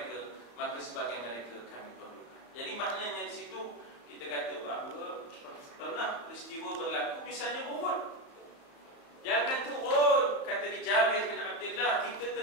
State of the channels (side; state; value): right; late; 34 ms